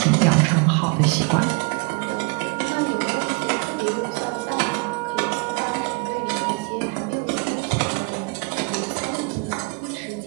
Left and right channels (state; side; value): quieter; left; 32.9 dB